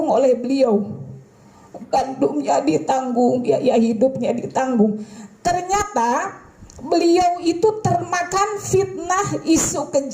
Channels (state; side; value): identical; both; correlation 1.00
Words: oleh beliau. Gandumnya ditanggung, biaya hidupnya ditanggung. Ternyata beliau itu termakan fitnah isu